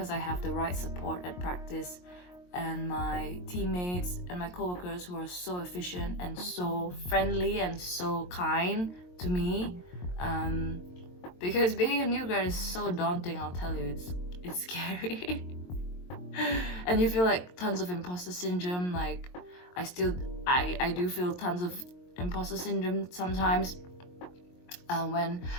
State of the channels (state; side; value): late; right; 22 ms